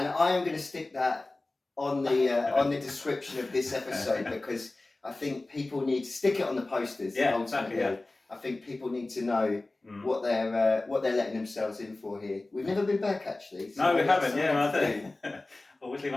I am going to stick that on the description of this episode, because I think people need to stick it on the posters. Yeah, exactly. Yeah. I think people need to know what they're letting themselves in for here. We've never been back actually. So no, we haven't. Yeah, I think. Always leave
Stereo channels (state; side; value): quieter; right; 3.0 dB